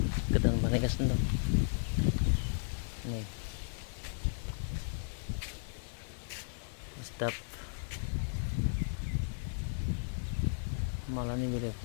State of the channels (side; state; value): right; silent; digital silence